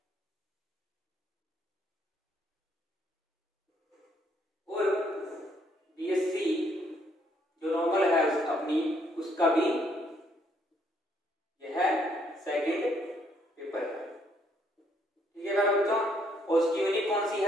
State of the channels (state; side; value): normal; both; correlation 0.69